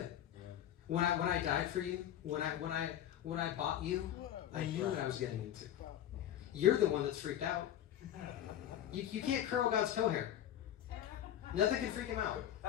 When I died for you, when I bought you, I knew what I was getting into. You're the one that's freaked out. You can't curl God's toe hair. Nothing can freak him out.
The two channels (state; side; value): quieter; right; 11.2 dB